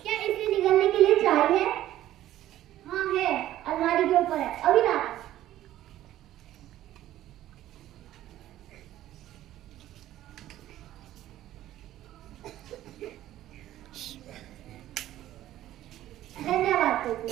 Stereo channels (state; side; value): quieter; left; 13.5 dB